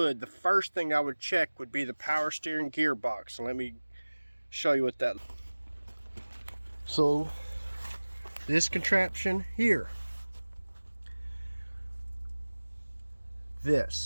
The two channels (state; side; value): inverted; both; correlation -1.00